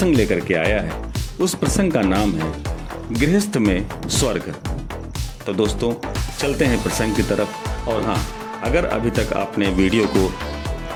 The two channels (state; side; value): identical; both; correlation 1.00